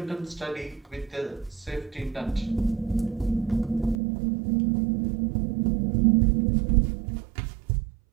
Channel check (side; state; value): left; drops out; at 4.0 s